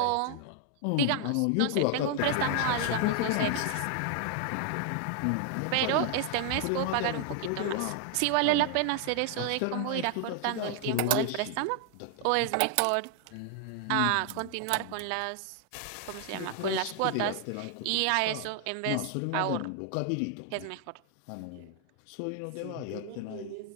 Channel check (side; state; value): both; different; correlation 0.00